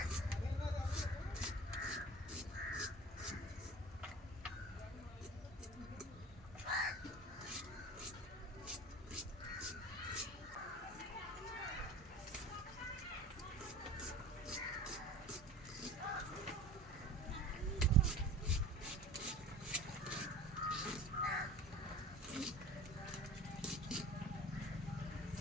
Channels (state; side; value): normal; both; correlation 0.39